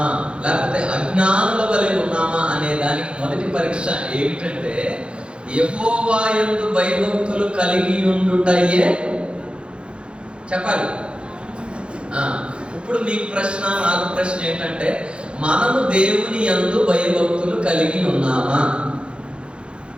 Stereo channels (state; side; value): late; left; 0.056 ms